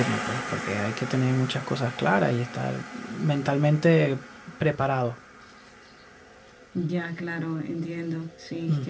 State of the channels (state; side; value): identical; both; correlation 1.00